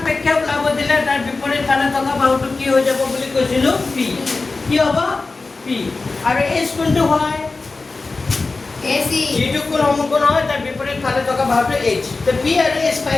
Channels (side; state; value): right; quieter; 3.7 dB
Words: ওলাব দিলে তাৰ বিপৰীত ফালে থকা বাহুটো কি হৈ যাব বুলি কৈছিলো P কি হ'ব P আৰু H কোনটো হয় এসি যিটো কোণ সমকোণ হয় তাৰ বিপৰীত ফালে থকা বাহুটো H তো P আৰু H